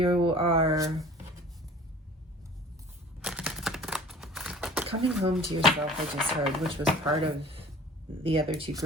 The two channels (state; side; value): normal; both; correlation 0.45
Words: are coming home to yourself, I just heard, which was part of the other two